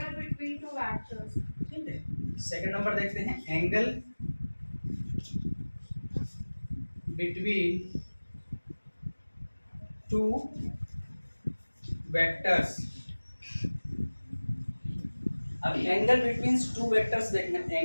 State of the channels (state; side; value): inverted; both; correlation -1.00